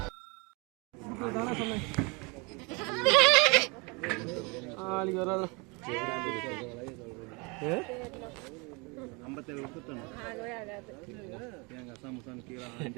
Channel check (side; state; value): left; quieter; 29.5 dB